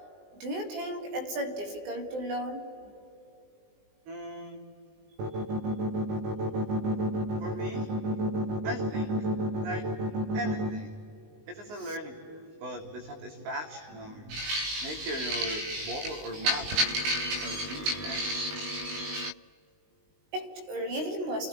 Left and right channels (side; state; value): left; late; 19 ms